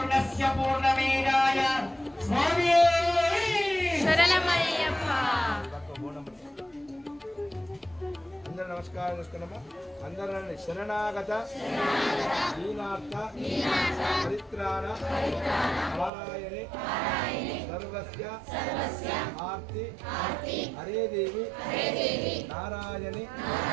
పూర్ణమేవాయ స్వామి శరణమయ్యప్ప. అందరూ నమస్కారం చేసుకున్నాము. అందరూ శరణాగత దీనార్థ పరిత్రాణ నారాయణి సర్వస్య ఆర్తి హరే దేవి నారాయణి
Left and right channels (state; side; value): drops out; left; at 16.1 s